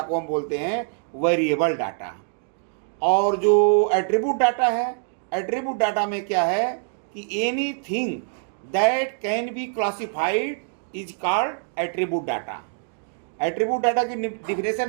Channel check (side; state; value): left; silent; digital silence